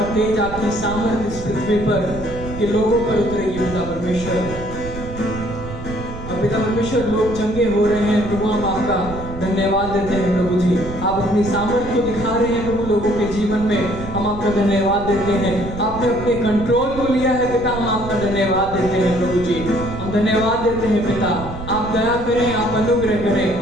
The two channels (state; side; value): noise; right; rumble, 11 dB below the sound